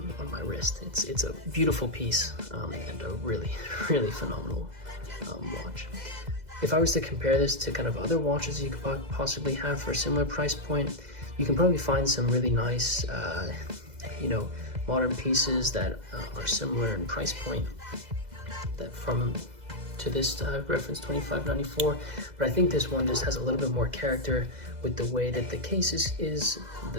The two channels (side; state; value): left; late; 2.0 ms